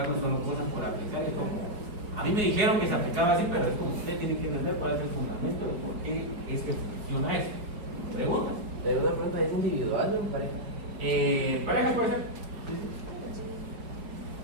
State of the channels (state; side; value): late; left; 4.8 ms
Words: solo cosas por aplicar. Es como, a mí me dijeron que se aplicaba así, pero es como ustedes tienen que entender cuál es el fundamento de por qué es que funciona eso. ¿Preguntas? Pero una pregunta es individual, ¿no? Pareja. ¿Parejas puede ser?